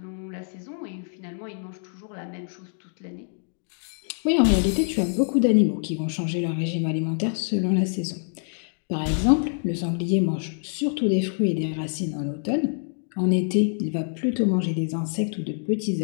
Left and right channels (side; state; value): right; silent; digital silence